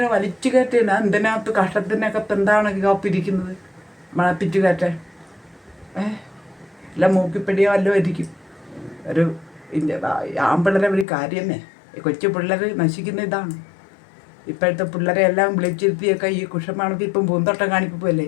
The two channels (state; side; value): drops out; right; at 11.1 s